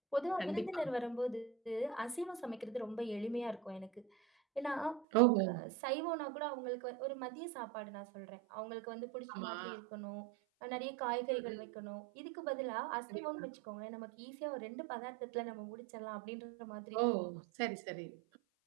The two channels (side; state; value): left; drops out; at 5.1 s